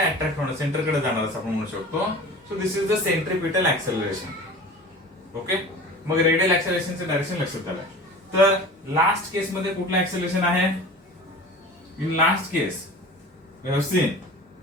होणं, सेंटर कडे जाणार असं आपण म्हणू शकतो. So this is the centripetal acceleration. Okay, मग रेडियल ऍक्सेलरेशनचं डायरेक्शन लक्षात आलं. तर लास्ट केस मध्ये कुठलं ऍक्सेलरेशन आहे? In last case we have seen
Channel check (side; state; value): both; normal; correlation 0.38